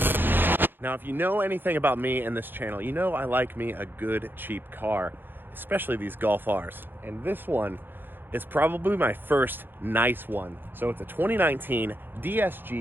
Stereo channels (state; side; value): late; left; 0.097 ms